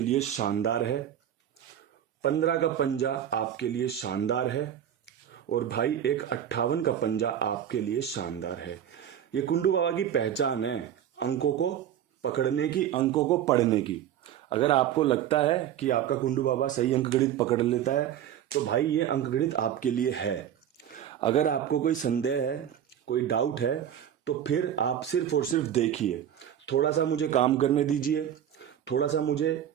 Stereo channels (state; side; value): quieter; left; 10.1 dB